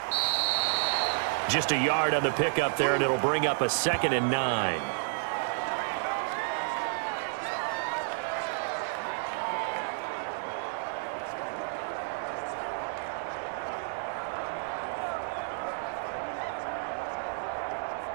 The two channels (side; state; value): left; silent; digital silence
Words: Just a yard on the pickup there, and it'll bring up a 2nd and 9.